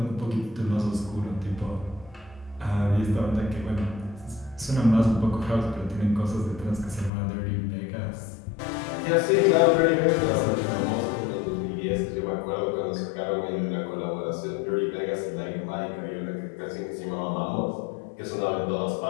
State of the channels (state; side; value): drops out; right; at 7.1 s